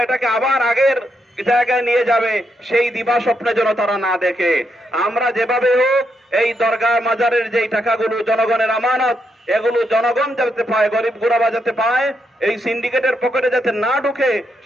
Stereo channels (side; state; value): both; normal; correlation 0.80